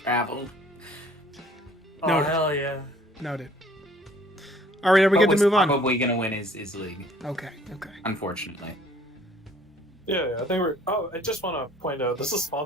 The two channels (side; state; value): both; normal; correlation 0.56